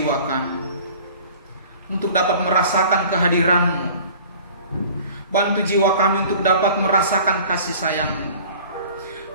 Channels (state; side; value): inverted; both; correlation -0.46